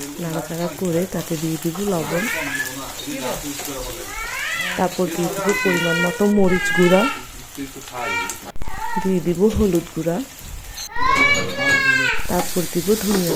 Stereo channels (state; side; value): identical; both; correlation 1.00